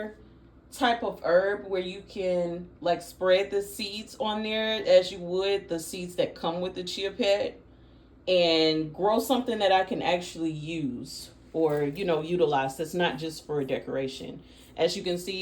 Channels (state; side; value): identical; both; correlation 1.00